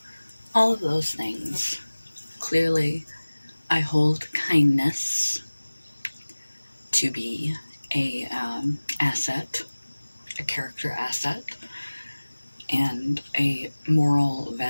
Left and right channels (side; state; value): both; inverted; correlation -1.00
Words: all of those things. Clearly, I hold kindness to be a asset, a character asset, and a moral